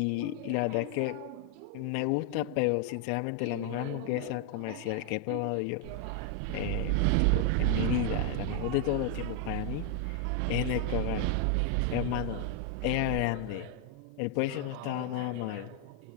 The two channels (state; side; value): different; both; correlation 0.00